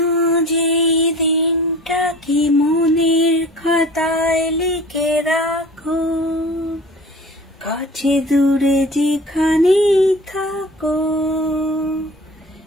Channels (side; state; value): both; normal; correlation 0.41